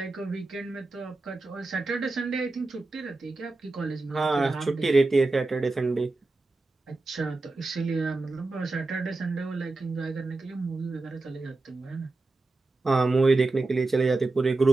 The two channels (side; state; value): left; quieter; 3.3 dB